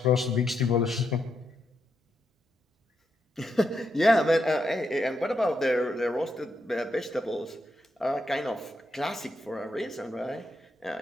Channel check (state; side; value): normal; both; correlation 0.82